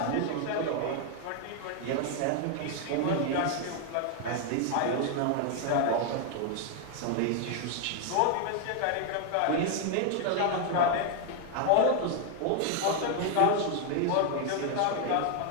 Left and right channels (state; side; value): different; both; correlation 0.00